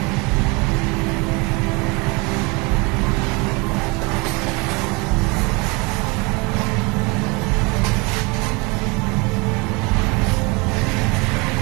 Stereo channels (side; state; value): left; quieter; 27.1 dB